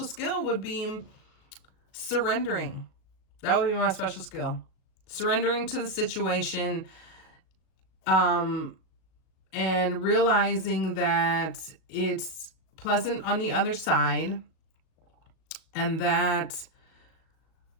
skill would be surrendering. That would be my special skill. Surrendering to the situation, and realizing that it's pleasant on the other side, and that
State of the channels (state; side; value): late; right; 37 ms